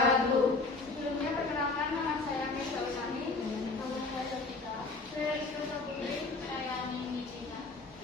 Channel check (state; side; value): quieter; right; 3.7 dB